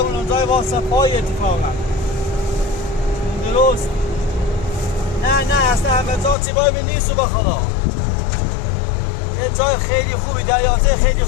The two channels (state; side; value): drops out; right; at 6.4 s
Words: اون جای واسه پای اتفاقا درست نه اصلا همه جا چیبای به نیست با خدا یه جای خیلی خوبی دریانسه خیلی